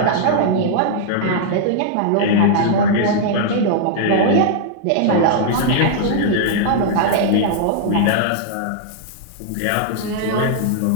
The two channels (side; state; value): both; different; correlation -0.01